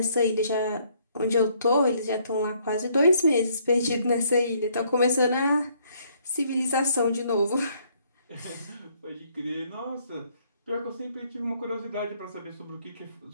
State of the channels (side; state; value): both; inverted; correlation -0.67